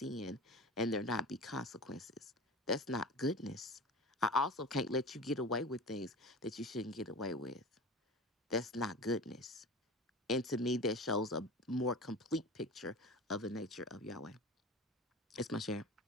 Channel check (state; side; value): normal; both; correlation 0.34